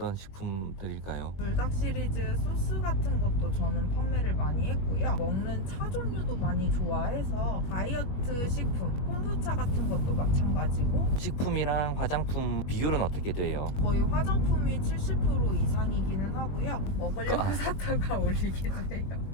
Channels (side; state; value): right; late; 21 ms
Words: 식품들일까요? 불닭 시리즈 소스 같은 것도 저는 판매를 많이 했고요. 먹는 차 종류도 많이 좋아해서 다이어트 식품, 콤부차 같은 것도 마찬가지고 식품 제품이랑 화장품 비율은 어떻게 돼요? 거의 화장품이 70% 이상이기는 하고요. 먹으려고 샀다가 올리기도